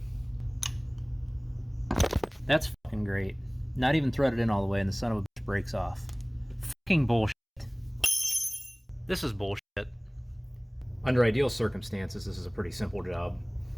That's fucking great. Not even threaded in all the way and the son of a bitch breaks off. Fucking bullshit. This is bullshit. Under ideal circumstances, this is a pretty simple job.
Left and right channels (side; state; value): both; identical; correlation 1.00